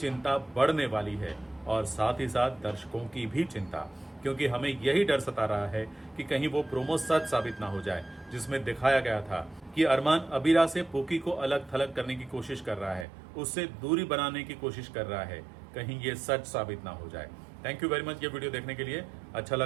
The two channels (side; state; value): left; drops out; at 13.1 s